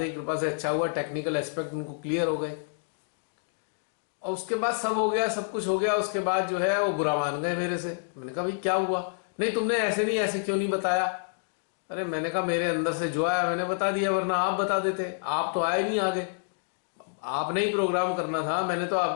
की कृपा से अच्छा हुआ, टेक्निकल एस्पेक्ट उनको क्लियर हो गए, और उसके बाद सब हो गया, सब कुछ हो गया। उसके बाद जो है वो बुरा मान गए मेरे से। मैंने कहा भाई क्या हुआ, नहीं तुमने ऐसे नहीं, ऐसे क्यों नहीं बताया। अरे मैंने कहा मेरे अंदर से जो आया मैंने बता दिया, वरना आप बता देते, आप तो आए नहीं आगे, आपने ही प्रोग्राम करना था, मैंने तो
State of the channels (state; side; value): silent; right; digital silence